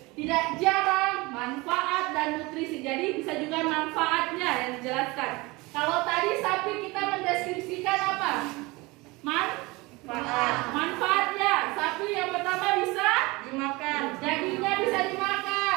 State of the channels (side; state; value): left; quieter; 23.4 dB